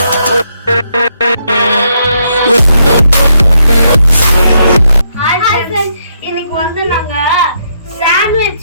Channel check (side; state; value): both; inverted; correlation -0.77